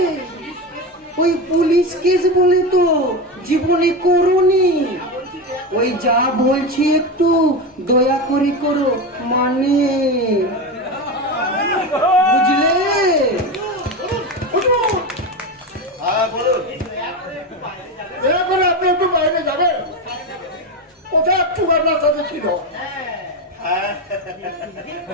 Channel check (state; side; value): normal; both; correlation 0.19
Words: ওই পুলিশ কেস বলে তো জীবনে করোনি। ওই যা বলছি একটু দয়া করে করো, মানে বুঝলে? হ্যাঁ বলুন। দয়া করে আপনি একটু বাইরে যাবেন, কোথায় একটু আপনার সাথে ছিল।